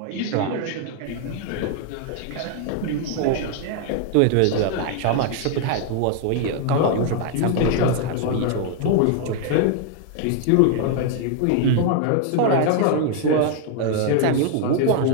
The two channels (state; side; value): different; both; correlation 0.00